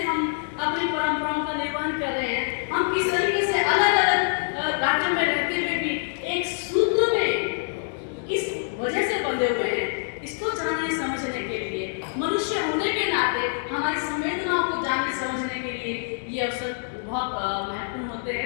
हम अपनी परंपराओं का निर्वहन कर रहे हैं, हम किस तरीके से अलग अलग राज्यों में रहते हुए भी एक सूत्र में किस वजह से बंधे हुए हैं, इसको जानने समझने के लिए, मनुष्य होने के नाते हमारी संवेदनाओं को जानने समझने के लिए ये अवसर बहुत महत्वपूर्ण होते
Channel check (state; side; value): silent; right; digital silence